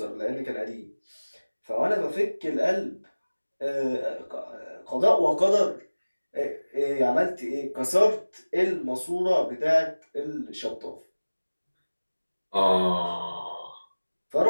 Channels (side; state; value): both; inverted; correlation -1.00